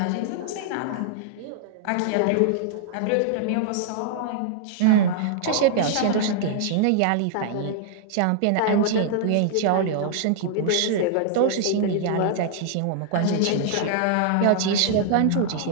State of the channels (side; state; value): both; different; correlation -0.01